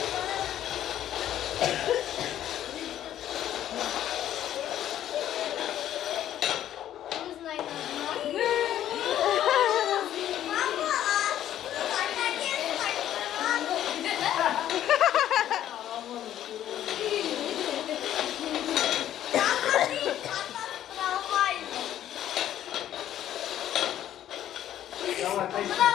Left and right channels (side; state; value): right; quieter; 11.7 dB